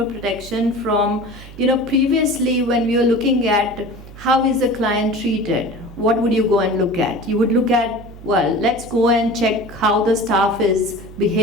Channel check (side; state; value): right; noise; hum, 17 dB below the sound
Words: protection from, previously when we were looking at how is the client treated, what would you go and look at? You would look at, well, let's go and check how the staff is